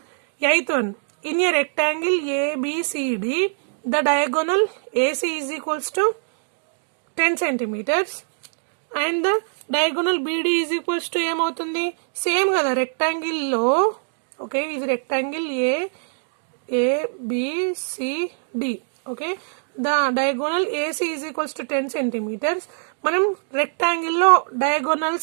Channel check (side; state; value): left; silent; digital silence